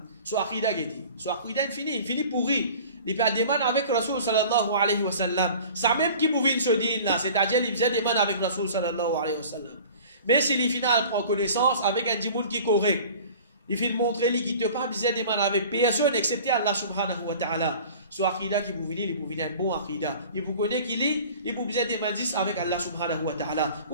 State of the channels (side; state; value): both; inverted; correlation -0.44